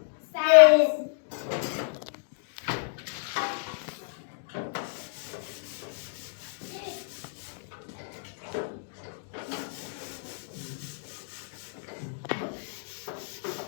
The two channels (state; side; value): silent; right; digital silence